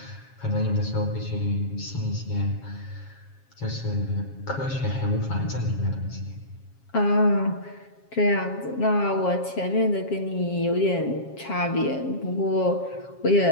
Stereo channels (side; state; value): right; late; 7.3 ms